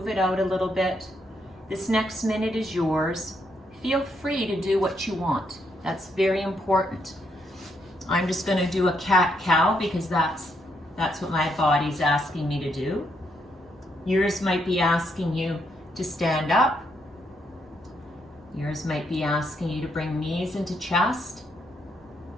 it out a little bit. This next minute is yours. Feel free to do what you want. That's very important. I'm just going to do a cat-cow because that's what my body's asking me to do. Yours might be asking you to stand up. Yours might be asking you to bring knees into chest.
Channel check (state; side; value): normal; both; correlation 0.77